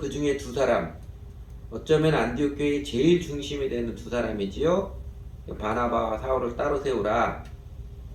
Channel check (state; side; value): identical; both; correlation 1.00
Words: 중에 2사람, 어쩌면 안디옥 교회의 제일 중심이 되는 2사람이지요. 바나바와 사울을 따로 세우라.